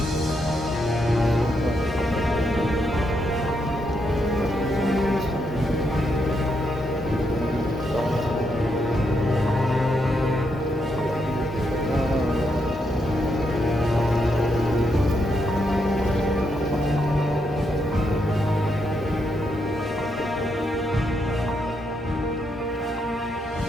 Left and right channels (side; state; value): both; normal; correlation 0.79